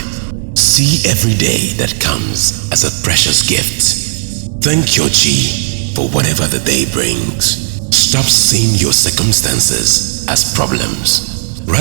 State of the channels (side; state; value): left; silent; digital silence